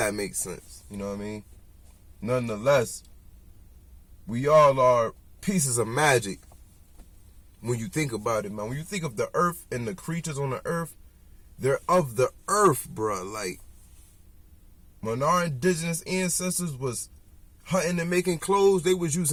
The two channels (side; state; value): both; identical; correlation 1.00